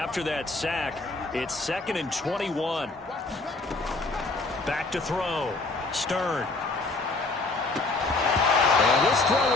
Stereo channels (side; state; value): right; quieter; 3.4 dB